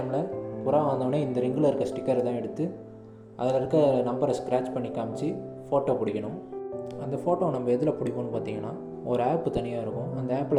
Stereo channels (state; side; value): identical; both; correlation 1.00